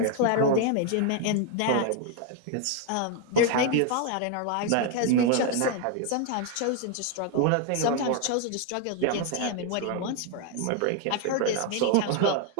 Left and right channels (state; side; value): different; both; correlation 0.00